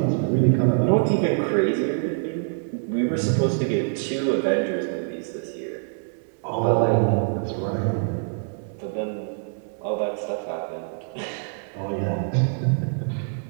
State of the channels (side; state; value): left; silent; digital silence